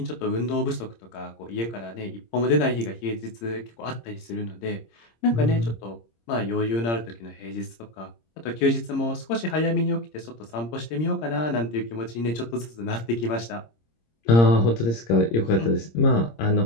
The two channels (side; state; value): right; late; 26 ms